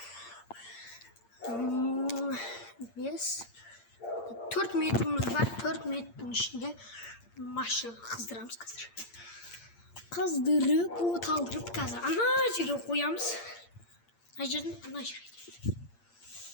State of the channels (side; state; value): right; late; 8.7 ms